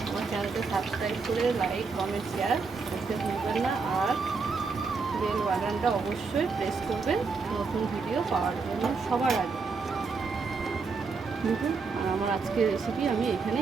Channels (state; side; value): quieter; left; 4.6 dB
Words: আমার চ্যানেলকে সাবস্ক্রাইব করে লাইক কমেন্ট শেয়ার করতে ভুলবেন না। আর বেল বাটনটা অবশ্যই প্রেস করবেন নতুন ভিডিও পাওয়ার জন্য সবার আগে। দেখুন, আর আমার আজকের রেসিপি আমি